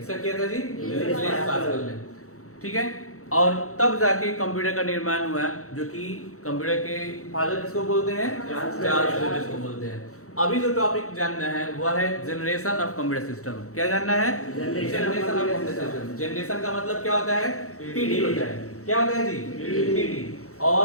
किया था जी? ब्लेज पास्कल ने, ठीक है। और तब जाके कंप्यूटर का निर्माण हुआ, जो कि कंप्यूटर के फादर किसको बोलते हैं? चार्ल्स बेबेज को बोलते हैं। अभी जो टॉपिक जानना है वह है जनरेशन ऑफ कंप्यूटर सिस्टम। क्या जानना है? Generation of computer system. Generation का मतलब क्या होता है? पीढ़ी होता है। क्या होता है जी? पीढ़ी।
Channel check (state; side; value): late; right; 0.64 ms